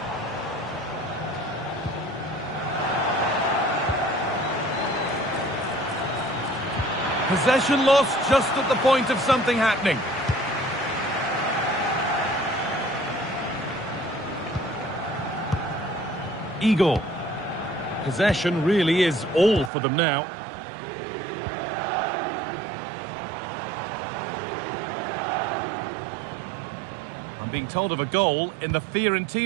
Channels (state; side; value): drops out; left; at 19.7 s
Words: Possession lost just at the point of something happening. Igor. Possession really is all for them now. I'm being told of a goal in the